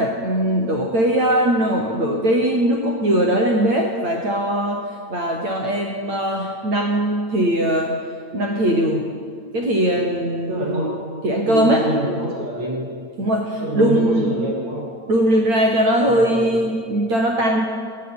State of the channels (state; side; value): late; left; 8.8 ms